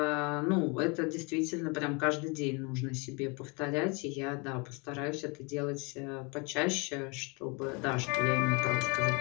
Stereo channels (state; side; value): quieter; right; 30.7 dB